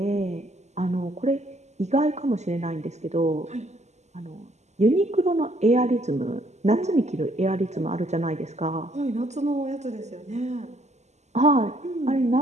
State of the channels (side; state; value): left; late; 0.33 ms